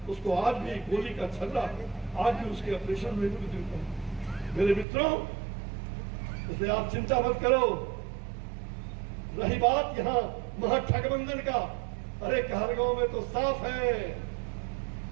उसको आज भी गोली का छर्रा, आज भी उसके ऑपरेशन में मृत्यु। मेरे मित्रों, इसलिए आप चिंता मत करो। रही बात यहाँ महागठबंधन का, अरे कहलगांव में तो साफ है,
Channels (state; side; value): drops out; left; at 4.9 s